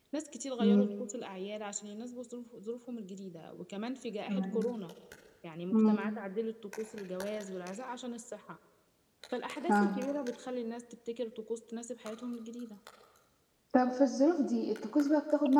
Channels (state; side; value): identical; both; correlation 1.00